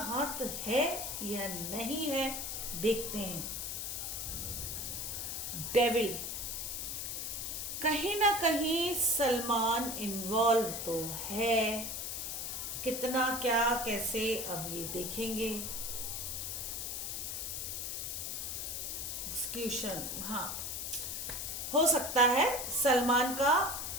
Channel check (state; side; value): noise; left; hiss, 4 dB below the sound